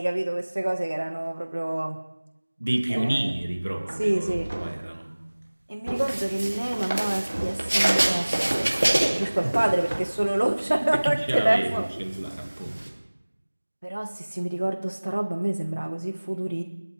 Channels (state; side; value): inverted; both; correlation -1.00